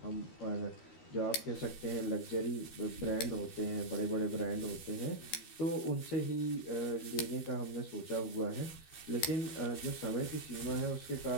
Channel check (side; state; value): right; late; 13 ms